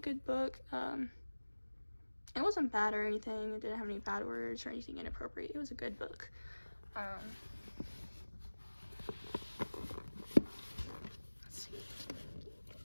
book. It wasn't bad or anything. It didn't have any bad words or anything inappropriate. It was a good book. Let's see.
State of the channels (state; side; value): inverted; both; correlation -1.00